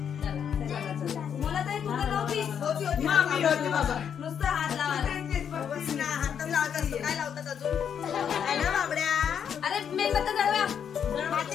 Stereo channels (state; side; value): quieter; right; 8.1 dB